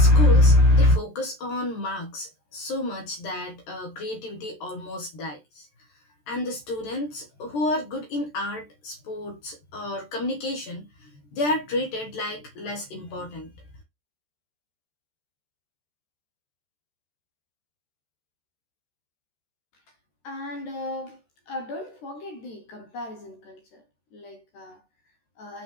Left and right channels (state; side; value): late; right; 13 ms